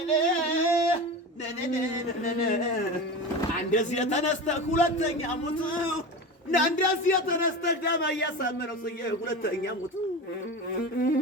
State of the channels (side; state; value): both; normal; correlation 0.27